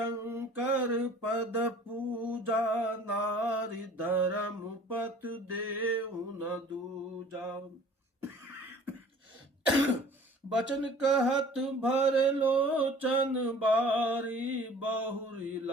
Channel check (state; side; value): normal; both; correlation 0.48